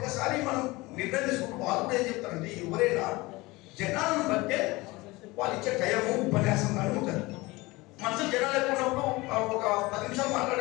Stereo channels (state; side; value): quieter; right; 21.9 dB